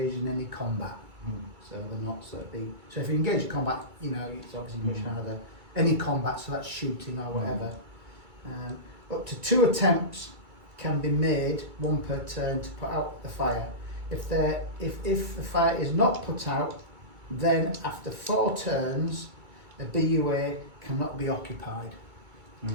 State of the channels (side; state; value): left; late; 2.3 ms